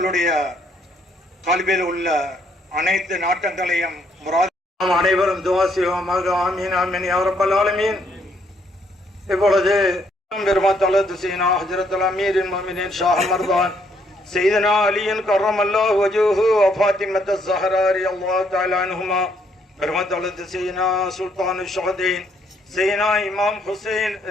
கல்வியில் உள்ள அனைத்து நாட்டங்களையும் அனைவரும் துஆ செய்வோமாக. ஆமீன் ஆமீன் யா ரப்பல் ஆலமீன். இப்பொழுது பெருமாத்தலது சீனா ஹஜ்ரத்துல் அமீரின் முஃமினீன் ஷாஹ் மர்தான் سيدنا علي كرم الله وجهه وفاطمة الزهراء رضي الله تعالى عنهما برمت سيدنا سلطان الشهدين سيدنا إمام حسين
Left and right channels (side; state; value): both; normal; correlation 0.70